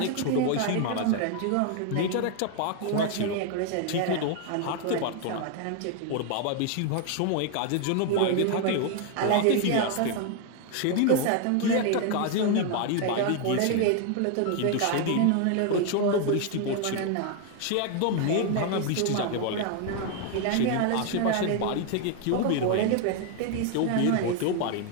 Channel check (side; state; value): both; different; correlation 0.00